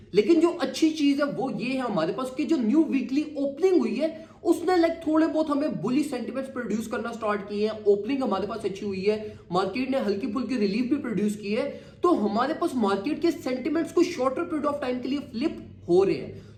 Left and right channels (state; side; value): identical; both; correlation 1.00